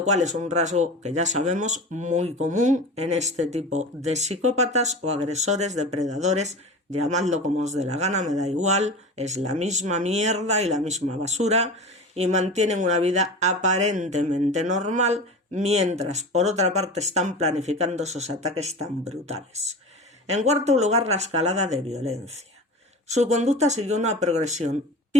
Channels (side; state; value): both; normal; correlation 0.32